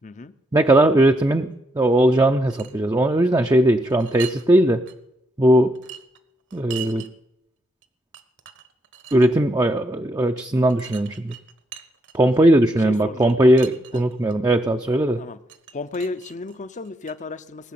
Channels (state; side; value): normal; both; correlation 0.78